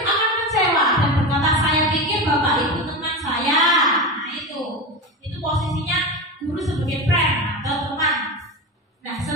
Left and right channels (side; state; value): both; normal; correlation 0.22